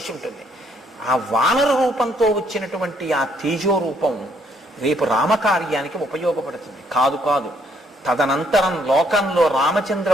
ఉంటుంది. ఆ వానర రూపంతో వచ్చినటువంటి ఆ తేజో రూపం రేపు రామకార్యానికి ఉపయోగపడుతుంది. కాదు కాదు, తదనంతరం లోకంలో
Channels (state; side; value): normal; both; correlation 0.68